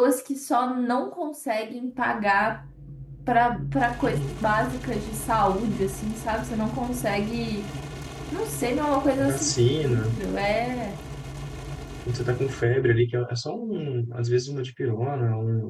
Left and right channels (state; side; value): identical; both; correlation 1.00